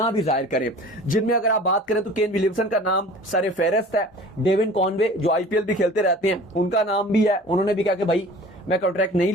भी जाहिर करें। जिनमें अगर आप बात करें तो केन विलियमसन का नाम सरे फेहरिस्त है। डेविन कॉनवे जो आईपीएल भी खेलते रहते हैं उनका नाम भी है। उन्होंने भी कहा कि भाई मैं कॉन्ट्रैक्ट नहीं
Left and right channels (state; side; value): normal; both; correlation 0.43